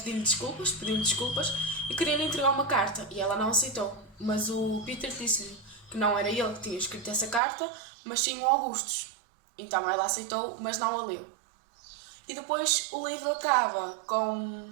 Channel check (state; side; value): drops out; left; at 7.4 s